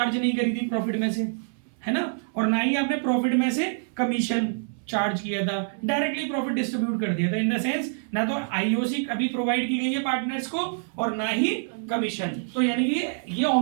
नहीं करी थी प्रॉफिट में से, है ना, और ना ही आपने प्रॉफिट में से कमीशन चार्ज किया था, डायरेक्टली प्रॉफिट डिस्ट्रीब्यूट कर दिया था। इन द सेंस ना तो आईओसी अभी प्रोवाइड की गई है पार्टनर्स को और ना ही कमीशन, तो यानी कि ये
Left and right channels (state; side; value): silent; left; 61 dB below the other